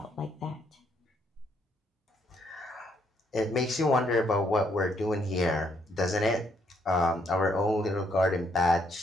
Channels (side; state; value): both; normal; correlation 0.71